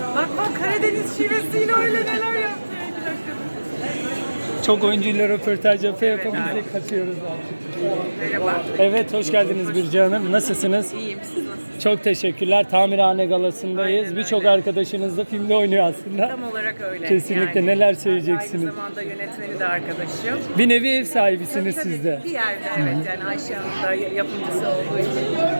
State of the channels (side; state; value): both; inverted; correlation -1.00